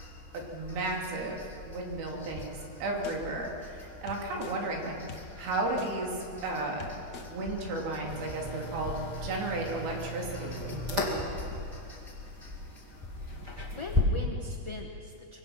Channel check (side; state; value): left; late; 8.4 ms